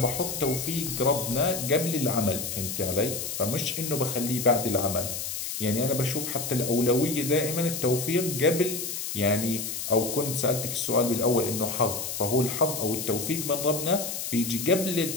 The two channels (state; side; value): noise; left; hiss, 4 dB below the sound